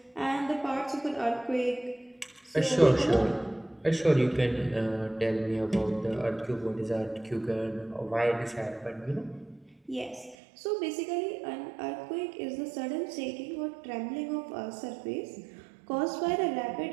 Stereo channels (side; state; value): left; drops out; at 10.4 s